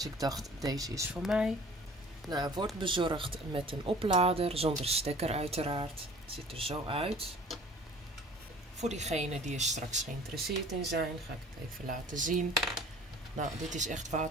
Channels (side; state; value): both; normal; correlation 0.48